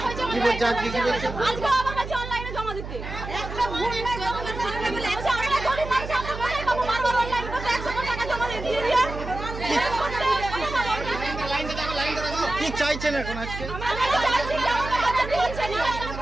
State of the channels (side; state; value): right; noise; hum, 9 dB below the sound